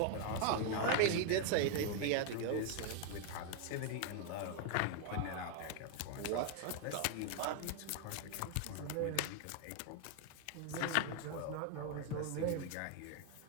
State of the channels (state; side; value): different; both; correlation 0.00